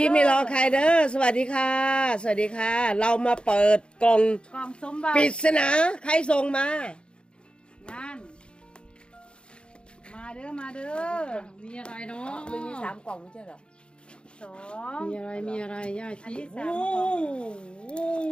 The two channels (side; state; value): right; late; 0.054 ms